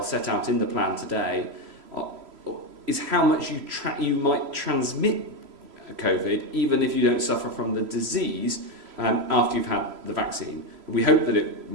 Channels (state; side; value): late; left; 3.0 ms